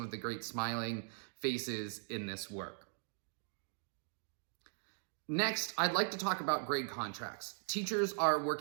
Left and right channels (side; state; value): left; silent; digital silence